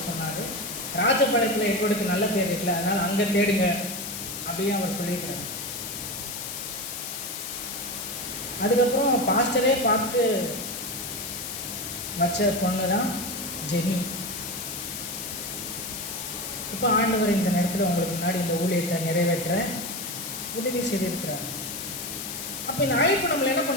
சொன்னார், ராஜபாளையத்தில் எட்வர்டுக்கு நல்ல பேர் இருக்குல்ல, அதனால் அங்கே தேடுங்க அப்படின்னு அவர் சொல்லியிருக்காரு. அதுக்கப்புறம் பாஸ்டரே பார்த்து வச்ச பொண்ணு தான் ஜெனி. இப்போ ஆண்டவர் இந்த நேரத்தில் உங்களுக்கு முன்னாடி இந்த ஊழியத்தை நிறைவேற்ற உதவி செய்திருக்கிறார். அப்போ இந்த அழைப்பு நம்மளை என்ன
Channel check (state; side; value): noise; left; hiss, 6 dB below the sound